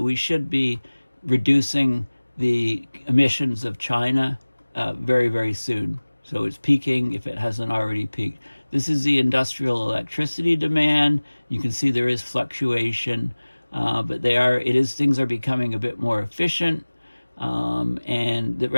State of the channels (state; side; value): inverted; both; correlation -1.00